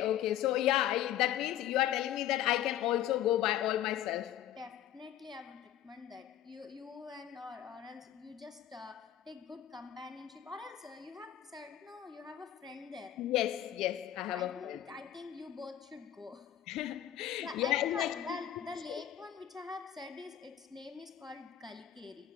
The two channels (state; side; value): quieter; right; 11.6 dB